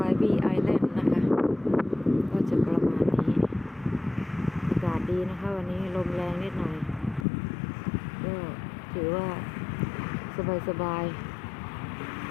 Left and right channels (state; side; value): drops out; right; at 7.2 s